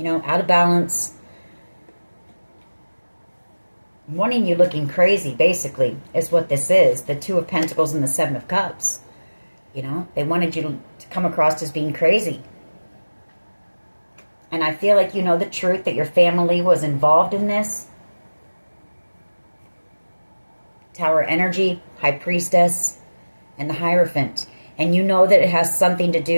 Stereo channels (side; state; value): both; inverted; correlation -1.00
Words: know, out of balance. Wanting you looking crazy, basically, is what this is. The Two of Pentacles and the Seven of Cups. You know, they wanted you to come across as being crazy. And I feel like you know the truth that your family was involved in this. Tower energy, High Priestess, and the Hierophant. And you know that it has something to